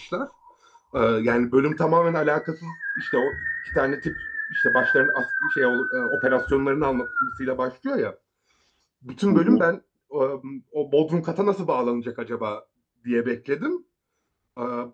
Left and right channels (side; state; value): both; identical; correlation 1.00